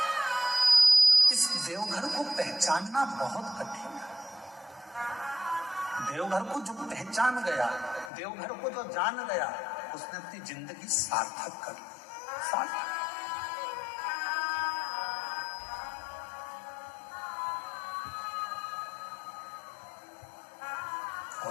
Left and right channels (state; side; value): drops out; right; at 8.1 s